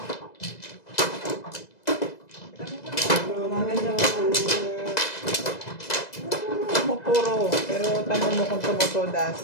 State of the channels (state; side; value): late; right; 2.0 ms